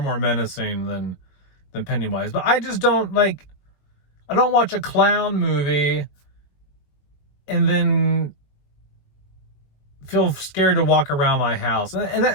menacing than Pennywise. But I just don't I don't watch a clown movie and then feel scared to walk around my house.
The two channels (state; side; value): late; right; 21 ms